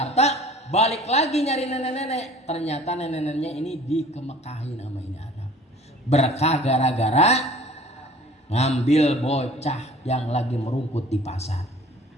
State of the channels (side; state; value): both; normal; correlation 0.48